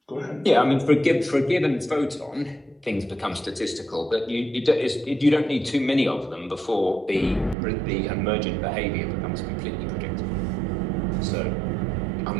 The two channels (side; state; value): left; drops out; at 7.6 s